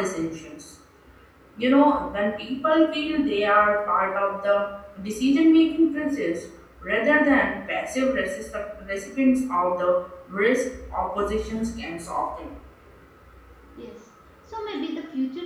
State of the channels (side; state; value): both; identical; correlation 1.00